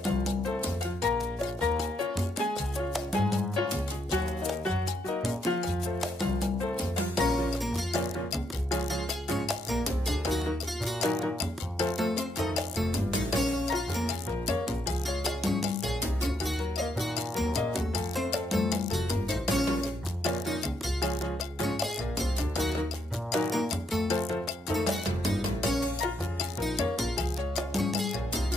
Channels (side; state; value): both; normal; correlation 0.76